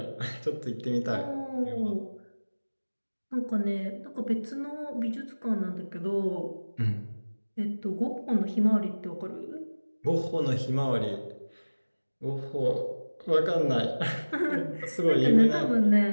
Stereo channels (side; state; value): both; inverted; correlation -1.00